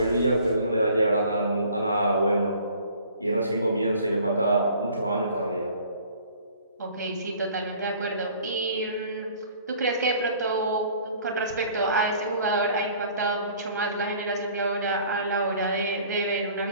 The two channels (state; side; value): inverted; both; correlation -0.52